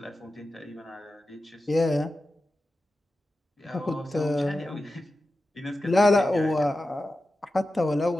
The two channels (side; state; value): both; normal; correlation 0.93